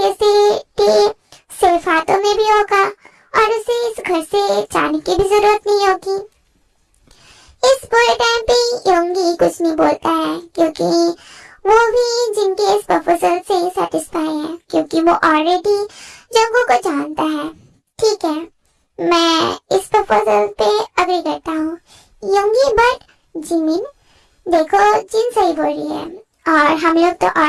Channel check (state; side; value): identical; both; correlation 1.00